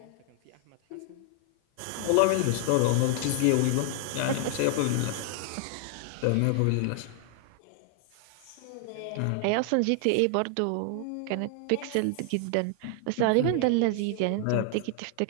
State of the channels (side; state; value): both; different; correlation 0.00